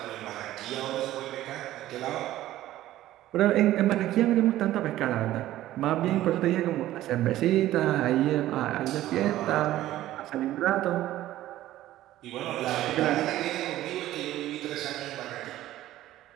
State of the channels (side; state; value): left; quieter; 14.4 dB